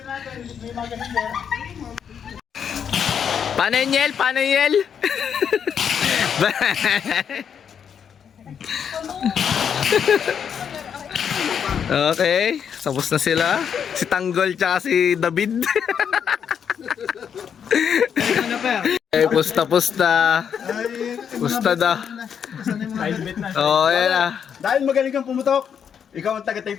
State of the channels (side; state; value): right; quieter; 7.7 dB